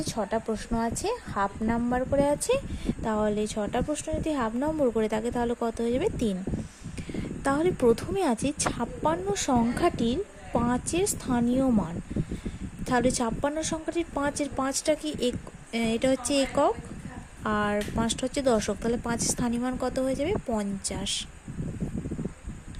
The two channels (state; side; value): identical; both; correlation 1.00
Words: 6টা প্রশ্ন আছে, হাফ নাম্বার করে আছে। তাহলে 6টা প্রশ্ন যদি হাফ নম্বর করে থাকে তাহলে কত হয়ে যাবে? 3। তাহলে প্রথমে আছে 56 সংখ্যাটির 5-এর স্থানীয় মান। তাহলে 56 সংখ্যাটির 5-এর 5টা কি এটা হচ্ছে একক আর 5টা হচ্ছে দশক। তাহলে 5-এর স্থানীয় মান কত হয়ে যাবে? 50।